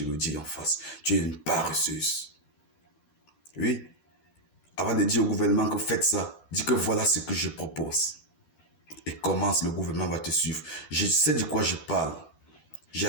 le dis en face. Tu es une paresseuse. Oui. Avant de dire au gouvernement que faites ça, dis que voilà ce que je propose. Et commence, le gouvernement va te suivre. Je sais de quoi je parle. J'ai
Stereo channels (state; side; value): late; right; 12 ms